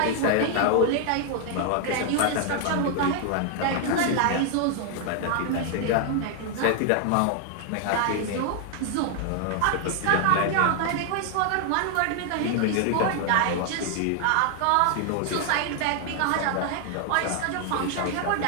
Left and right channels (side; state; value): both; different; correlation 0.00